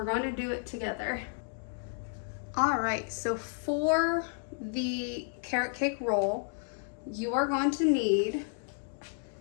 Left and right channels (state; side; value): silent; right; 56 dB below the other